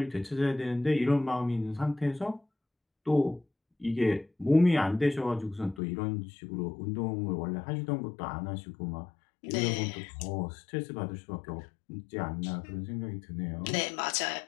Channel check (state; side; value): drops out; right; at 5.8 s